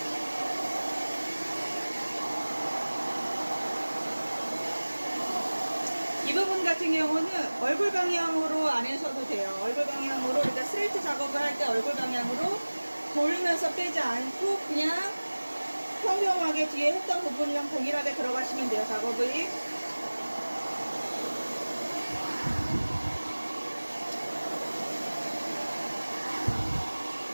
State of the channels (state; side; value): inverted; both; correlation -1.00